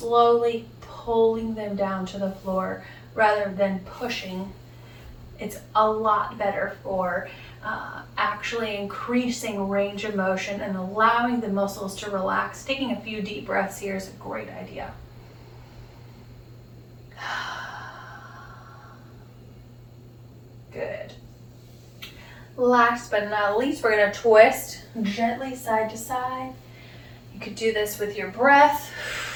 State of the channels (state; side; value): identical; both; correlation 1.00